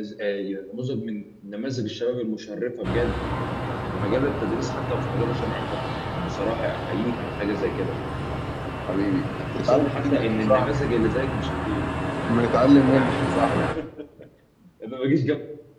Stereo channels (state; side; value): identical; both; correlation 1.00